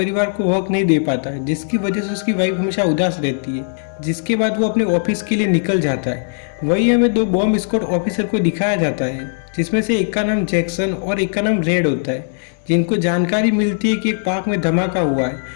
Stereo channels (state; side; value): silent; right; 62 dB below the other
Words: को वक्त नहीं दे पाता है, जिसकी वजह से उसकी वाइफ हमेशा उदास रहती है। जिसके बाद वो अपने ऑफिस के लिए निकल जाता है। वही हमें दो बॉम्ब स्क्वाड ऑफिसर को दिखाया जाता है, जिसमें से एक का नाम जैक्सन और एक का नाम रेड होता है, जिनको जानकारी मिलती है कि एक पार्क में धमाका हुआ है,